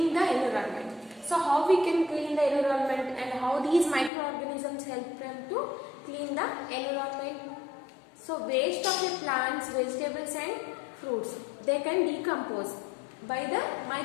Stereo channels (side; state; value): right; drops out; at 4.1 s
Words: the environment. So how we can clean the environment and how these microorganisms help them to clean the environment. So waste of the plants, vegetables and fruits, they can decompose by the